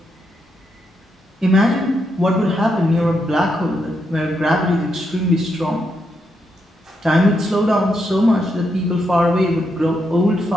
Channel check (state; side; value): normal; both; correlation 0.81